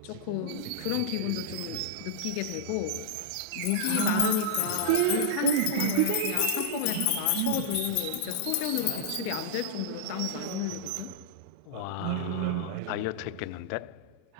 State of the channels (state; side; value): different; both; correlation -0.01